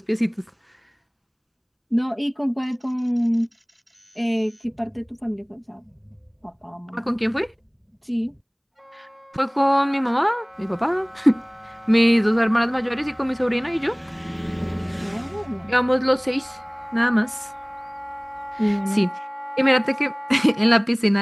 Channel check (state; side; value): identical; both; correlation 1.00